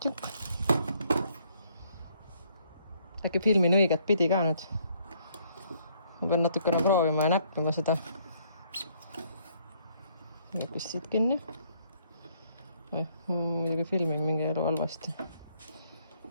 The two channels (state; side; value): inverted; both; correlation -0.67